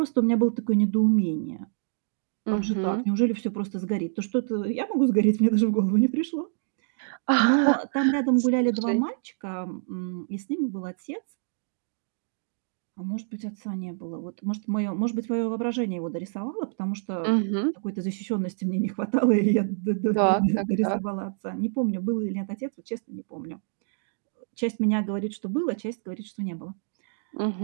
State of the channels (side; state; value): left; silent; digital silence